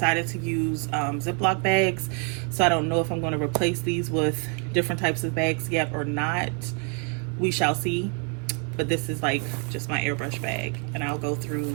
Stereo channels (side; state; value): left; quieter; 35.3 dB